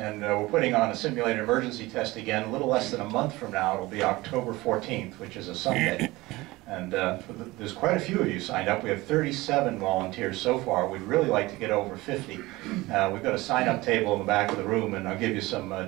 we're putting on a simulated emergency test again a little less than a month from now. It'll be October 14th, which is a Sunday. And there's quite a few of you signed up. We have 37 volunteers so far. We'd really like to get over 50. We've got a sign-up table in the back of the room, and I'll give you some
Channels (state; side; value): quieter; left; 20.3 dB